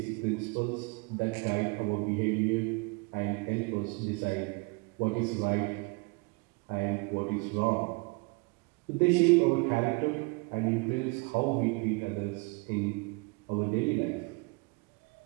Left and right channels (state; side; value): quieter; left; 29.1 dB